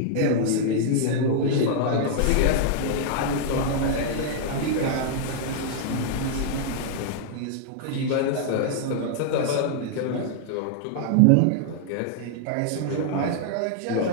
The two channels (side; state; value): both; different; correlation -0.01